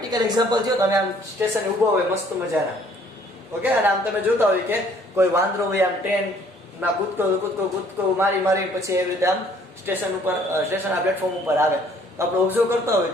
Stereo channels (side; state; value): both; normal; correlation 0.59